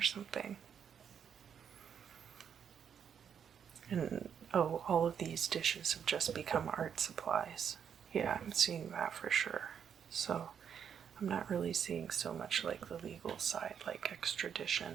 something. And oh, all of these dishes have just become art supplies. Yeah, I'm seeing that for sure. So I'm not really seeing so much like the legal side, like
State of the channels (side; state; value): left; quieter; 7.9 dB